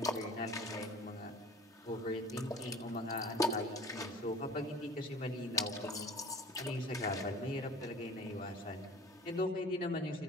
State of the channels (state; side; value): normal; both; correlation 0.44